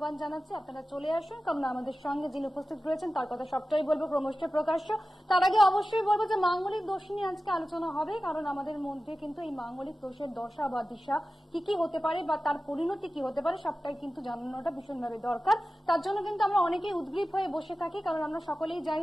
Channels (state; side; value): normal; both; correlation 0.95